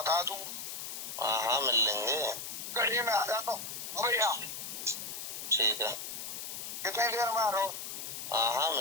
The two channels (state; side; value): noise; left; hiss, 7 dB below the sound